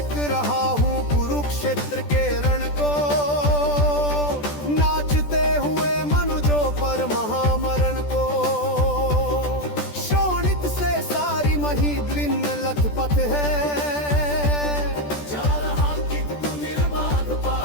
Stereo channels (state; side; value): late; right; 14 ms